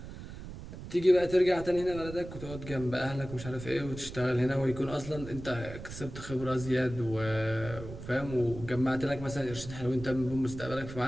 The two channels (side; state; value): right; noise; rumble, 11 dB below the sound